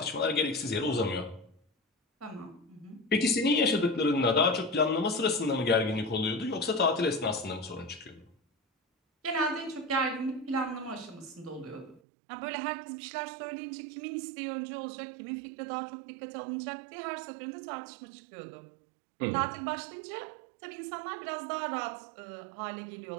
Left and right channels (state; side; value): drops out; left; at 12.0 s